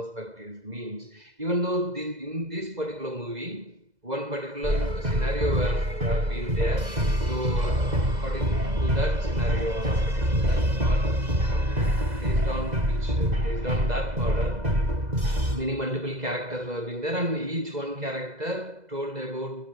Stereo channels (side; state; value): left; late; 2.0 ms